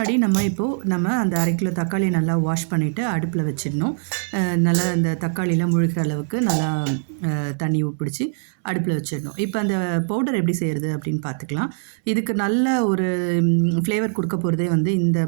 நம்ம அந்த 1/2 கிலோ தக்காளியை நல்லா வாஷ் பண்ணிவிட்டு அடுப்பில் வச்சிடணும். நல்லா அந்த தக்காளியில் முழுகிற அளவுக்கு நல்லா தண்ணி பிடிச்சி அடுப்பில் வச்சிடணும். இப்போ அந்த பவுடர் எப்படி செய்கிறது அப்படின்னு பார்த்துக்கலாம். இதுக்கு நல்ல ஒரு ஃப்ளேவர் கொடுக்க போகிறதே வந்து இந்த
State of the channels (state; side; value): silent; left; 64 dB below the other